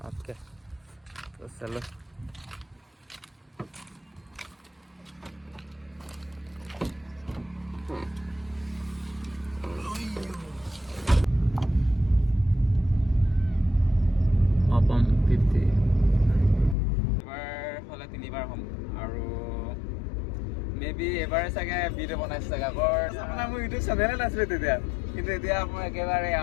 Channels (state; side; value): drops out; right; at 16.8 s